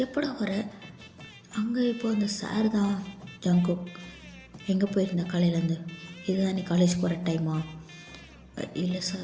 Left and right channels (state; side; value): identical; both; correlation 1.00